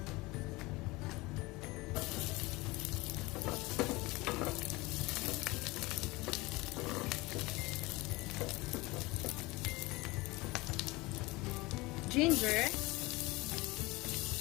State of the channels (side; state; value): right; quieter; 22.2 dB